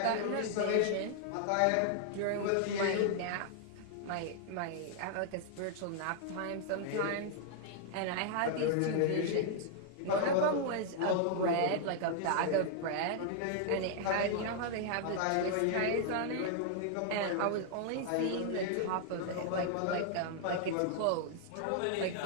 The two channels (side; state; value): both; different; correlation -0.01